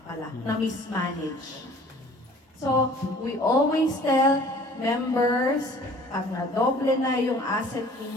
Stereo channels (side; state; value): both; normal; correlation 0.50